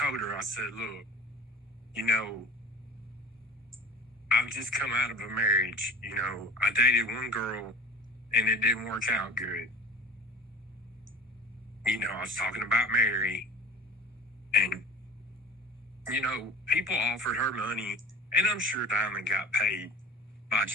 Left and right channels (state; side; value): normal; both; correlation 0.37